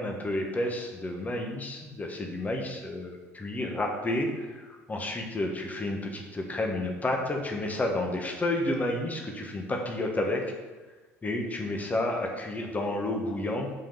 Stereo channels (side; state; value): both; normal; correlation 0.65